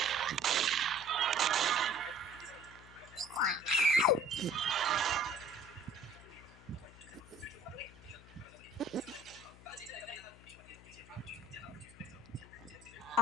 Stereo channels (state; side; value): noise; left; hum, 20 dB below the sound